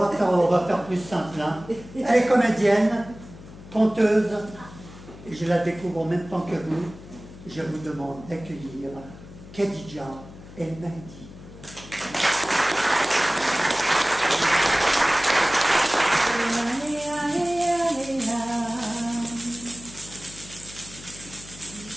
va faire plus simple. Hein. Elle est comédienne, conteuse, et je la découvre en même temps que vous. Je vous demande d'accueillir Khadija El Mahdi.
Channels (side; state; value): left; noise; hum, 17 dB below the sound